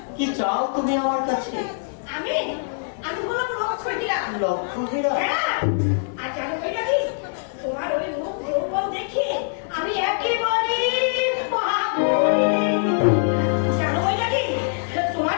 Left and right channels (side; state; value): right; silent; digital silence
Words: কি চাও তুমি আমার কাছে? আমি আমি বললাম লক্ষ্মীরা। লক্ষ্যহীরা? হ্যাঁ, আর জানো বৈরাগী, তোমার ওই মুখ রূপম দেখে আমি একেবারে জানো বৈরাগী,